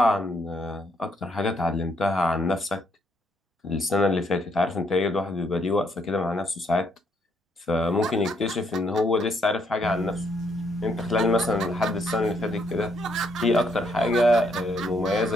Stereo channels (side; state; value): both; normal; correlation 0.72